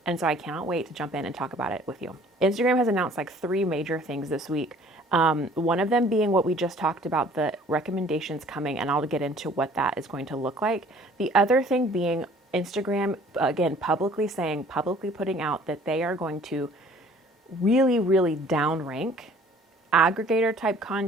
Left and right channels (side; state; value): both; normal; correlation 0.53